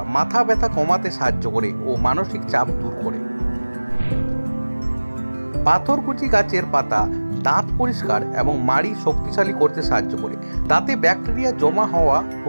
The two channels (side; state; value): both; inverted; correlation -1.00